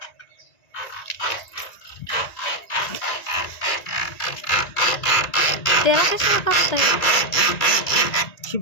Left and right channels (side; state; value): right; late; 1.9 ms